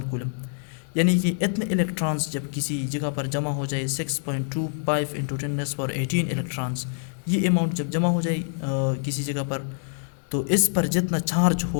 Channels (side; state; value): right; silent; digital silence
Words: coulomb. यानी कि इतने इलेक्ट्रॉन्स जब किसी जगह पर जमा हो जाए, 6.25 इंटू 10⁻18 इलेक्ट्रॉन्स, ये अमाउंट जब जमा हो जाए किसी जगह पर, तो इस पर जितना चार्ज